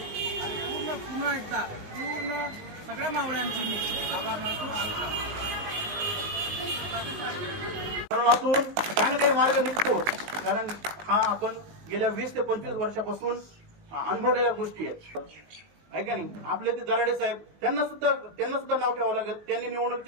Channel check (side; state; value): left; late; 19 ms